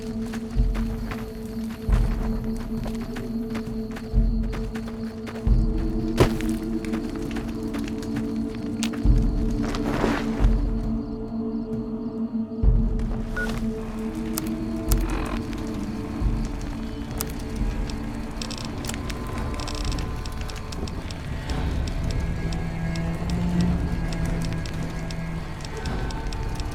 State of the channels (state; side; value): identical; both; correlation 1.00